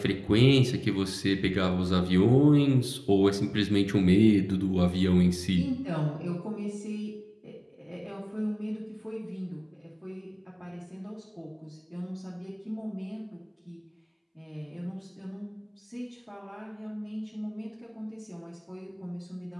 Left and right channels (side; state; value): both; identical; correlation 1.00